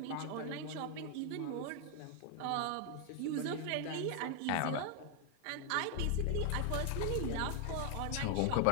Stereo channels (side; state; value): both; different; correlation 0.00